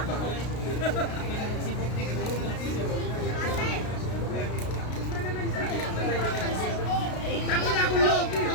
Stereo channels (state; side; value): late; right; 33 ms